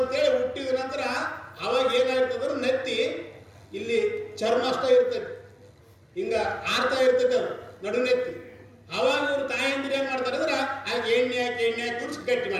ಹುಟ್ಟಿದ ನಂತರ ಅವಾಗ ಏನಾಗ್ತದ್ರೆ ನೆತ್ತಿ ಇಲ್ಲಿ ಚರ್ಮ ಅಷ್ಟ ಇರ್ತದೆ, ಹಿಂಗ ಆರ್ತಾ ಇರ್ತದೆ ಅದು ನಡುನೆತ್ತಿ. ಅವಾಗ ಇವ್ರು ತಾಯಂದಿರು ಏನ್ ಮಾಡ್ತಾರೆ ಅಂದ್ರೆ ಆಗ ಎಣ್ಣೆ ಹಾಕಿ ಕುಡಿಸಿ ಗಟ್ಟಿ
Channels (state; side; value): identical; both; correlation 1.00